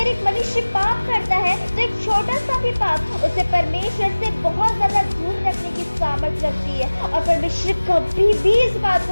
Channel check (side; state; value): both; inverted; correlation -1.00